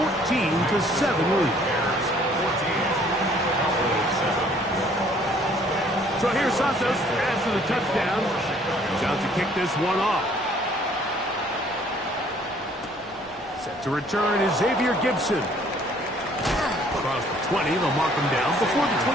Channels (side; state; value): both; normal; correlation 0.59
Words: lead. So here's Santos after the touchdown. He's out to kick this one off. Set to return is Xavier Gibson. Across the 20, they'll mark him down before the